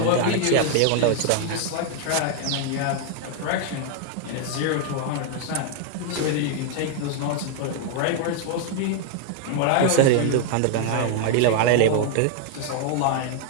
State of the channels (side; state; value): both; different; correlation 0.00